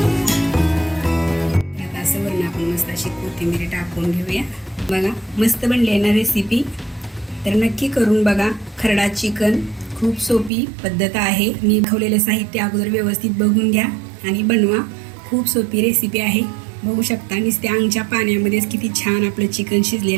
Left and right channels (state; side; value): drops out; left; at 10.5 s